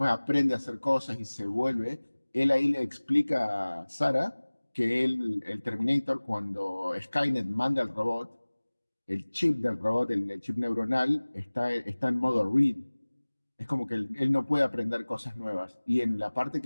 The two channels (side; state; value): both; inverted; correlation -1.00